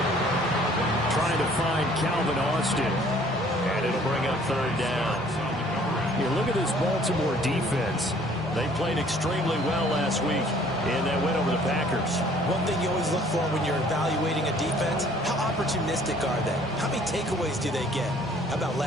Trying to find Calvin Austin. And it'll bring up third down. You look at this Baltimore defense. They played extremely well last week in that win over the Packers. One thing you always look for when you're evaluating a defense, how opportunistic are they? How many takeaways do they get? How about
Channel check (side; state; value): both; normal; correlation 0.57